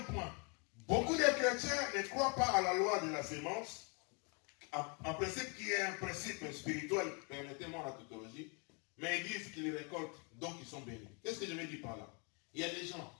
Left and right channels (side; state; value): right; quieter; 35.1 dB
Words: point. Beaucoup de chrétiens ne croient pas à la loi de la sémence. En principe, qui est un principe spirituel, permettez-moi la tautologie, mais ils disent qu'ils récoltent, donc ils sont bénis. Qu'est-ce que je veux dire par là? Il y a des gens,